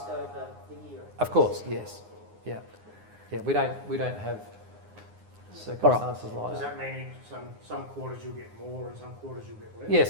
the year. of course, yes, yeah, we don't have circumstances like Does that. that mean some quarters you'll get more and some quarters you'll get less?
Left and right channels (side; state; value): left; late; 9.7 ms